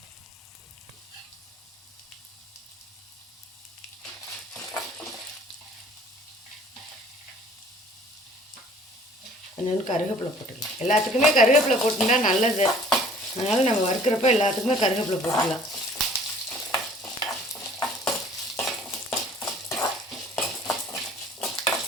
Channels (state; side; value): normal; both; correlation 0.53